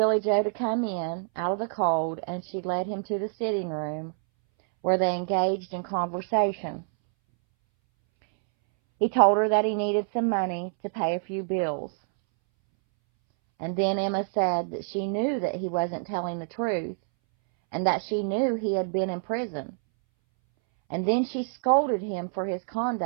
Joe to come in out of the cold, and she led him to the sitting room where they engaged in conversation. He told her that he needed some money to pay a few bills. And then Emma said that she knew that he wasn't telling the truth, and that she knew he had been in prison. And then she scolded him for his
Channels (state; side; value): silent; left; 60 dB below the other